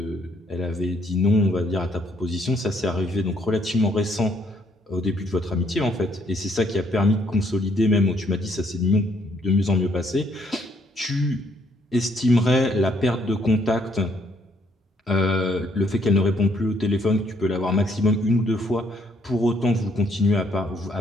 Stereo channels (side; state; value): both; normal; correlation 0.69